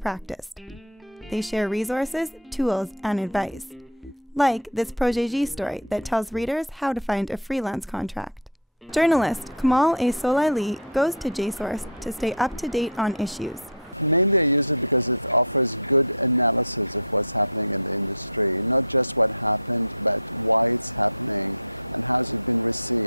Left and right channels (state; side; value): normal; both; correlation -0.06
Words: They share resources, tools, and advice, like this ProjetJ story that tells readers how to find a freelance contract. Journalist Kamal A. Solaili goes to JSource to stay up to date on issues.